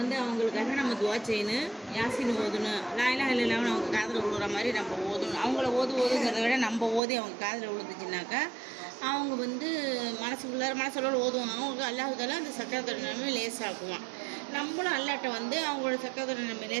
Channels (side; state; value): left; drops out; at 7.0 s